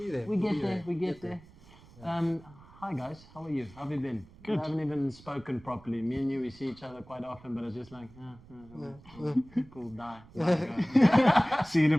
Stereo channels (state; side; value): noise; right; rumble, 23 dB below the sound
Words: there. We get there. We get there. Hi guys, how are you? How have you been? Good. We haven't even spoken properly. Me and you, we see each other quite often, but it's just like, cool, die. Go. See in a